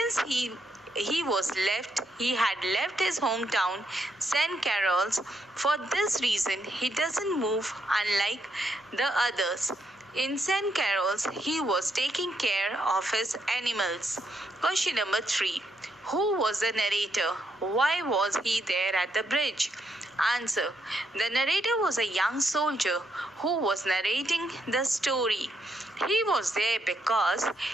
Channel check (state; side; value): normal; both; correlation 0.78